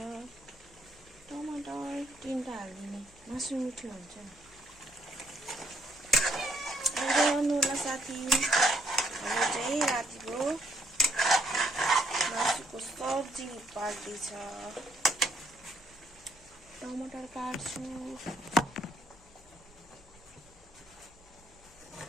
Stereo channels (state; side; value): noise; left; hum, 27 dB below the sound